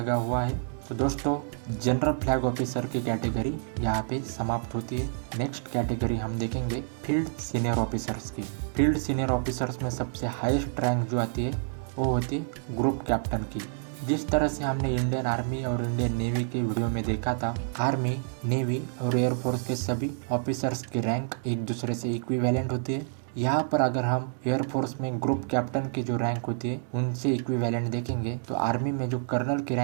हुआ है। तो दोस्तों, जनरल फ्लैग ऑफिसर की कैटेगरी यहाँ पे समाप्त होती है। नेक्स्ट कैटेगरी हम देखेंगे फील्ड सीनियर ऑफिसर्स की। फील्ड सीनियर ऑफिसर्स में सबसे हाईएस्ट रैंक जो आती है वो होती है ग्रुप कैप्टन की। जिस तरह से हमने इंडियन आर्मी और इंडियन नेवी के वीडियो में देखा था, आर्मी, नेवी और एयरफोर्स के सभी ऑफिसर्स की रैंक एक दूसरे से इक्विवेलेंट होती है। यहाँ पर अगर हम एयरफोर्स में ग्रुप कैप्टन की जो रैंक होती है उनसे इक्विवेलेंट देखेंगे तो आर्मी में जो कर्नल की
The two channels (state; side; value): silent; left; digital silence